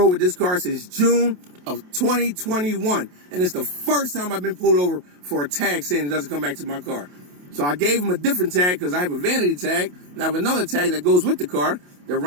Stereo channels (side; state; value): left; late; 28 ms